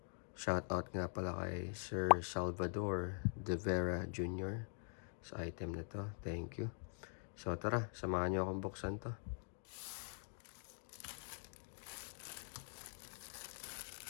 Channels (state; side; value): silent; right; digital silence